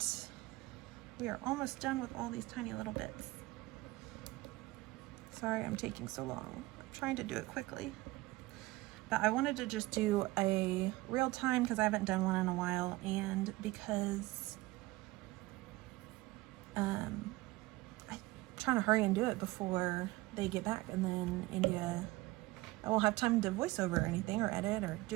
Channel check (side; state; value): left; quieter; 19.9 dB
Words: We are almost done with all these tiny little bits. Sorry I'm taking so long. I'm trying to do it quickly. But I wanted to just do a real time because I haven't done one in a while, and because I'm trying to hurry and do it before they get back, and then India, I won't have time to voice over or anything or edit or